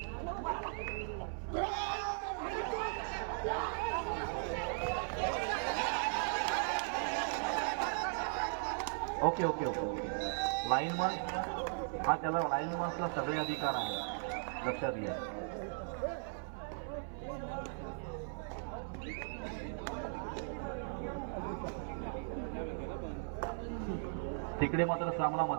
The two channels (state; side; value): silent; left; 52 dB below the other